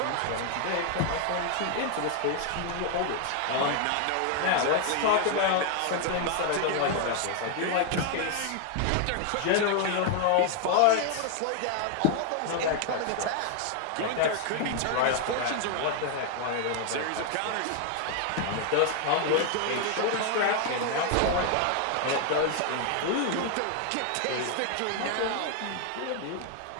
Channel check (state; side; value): different; both; correlation 0.00